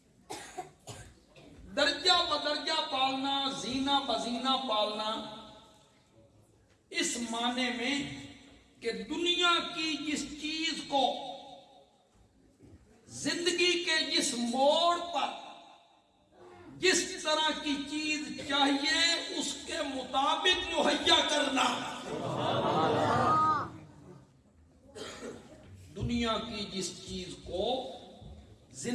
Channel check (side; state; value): both; identical; correlation 1.00